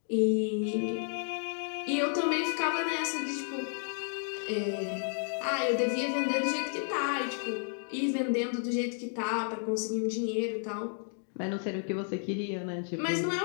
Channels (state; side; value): silent; right; 57 dB below the other